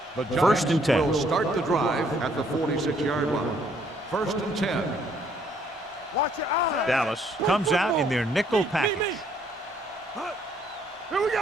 The Giants 1st and 10. will start the drive at the 46-yard line. 1st and 10. Watch your eyes. Dallas comes out in their nickel package. Here we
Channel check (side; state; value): both; normal; correlation 0.66